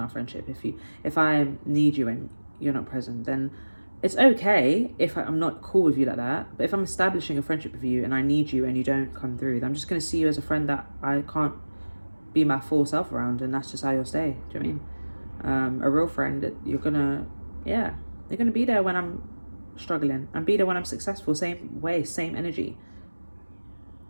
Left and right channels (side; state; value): both; inverted; correlation -1.00